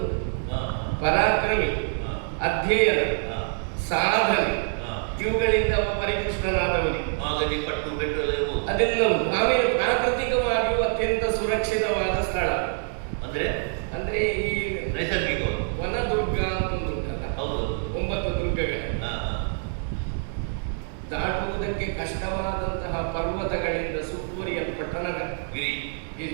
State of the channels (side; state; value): left; silent; 61 dB below the other